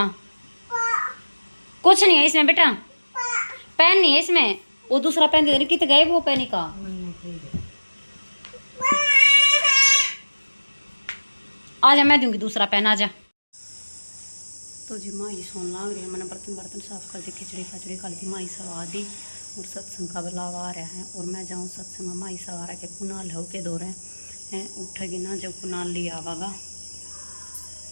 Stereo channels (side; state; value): both; inverted; correlation -1.00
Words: कुछ नहीं है इसमें बेटा, पेन नहीं है इसमें। वो दूसरा पेन दे, कितने गए वो पेन का। आजा मैं दूंगी दूसरा पेन, आजा। तो जी माँ ये सोन लाग रही है, मैंने बर्तन साफ कर दी, खिचड़ी खचड़ी खा दी, माई सवा दी। और सत्संग का बुलावा आ रहा है और मैं जाऊँ सत्संग में। माई सवा रहा के कुनाल हो के दो रहे हैं, उठेगी ना जब कुनाल लिया आवागा।